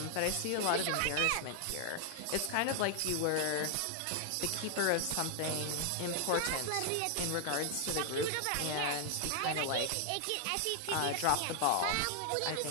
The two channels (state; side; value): different; both; correlation 0.00